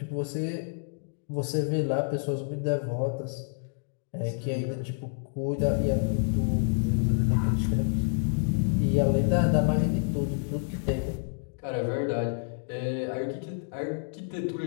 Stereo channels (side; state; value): right; silent; digital silence